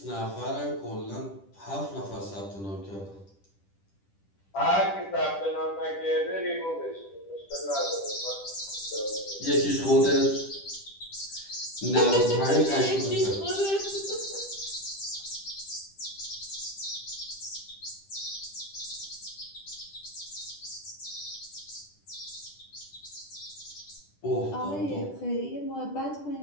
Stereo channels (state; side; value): late; right; 10 ms